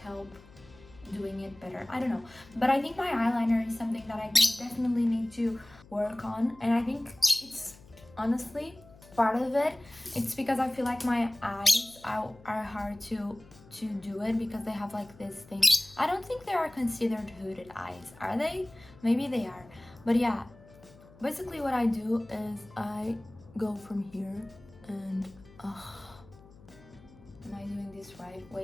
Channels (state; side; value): noise; left; hum, 23 dB below the sound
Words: doing it better. I don't know, but I think my eyeliner is something that I definitely need to work on, and I think it's honestly part of it. It's because I feel like my eyes are hard to do it, because they have like this thing. I don't think they are considered hooded eyes, are they? Maybe they are, but yeah, basically what I do is I go from here and am I doing this right?